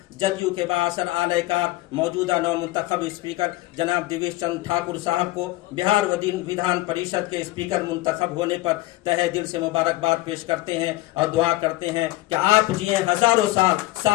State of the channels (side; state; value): right; quieter; 18.1 dB